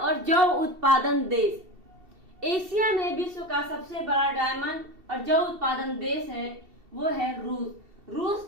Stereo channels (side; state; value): left; late; 2.7 ms